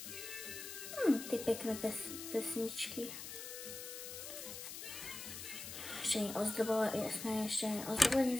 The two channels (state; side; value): noise; left; hiss, 9 dB below the sound